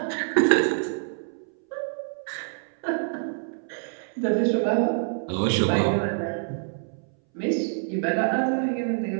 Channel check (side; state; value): left; silent; 61 dB below the other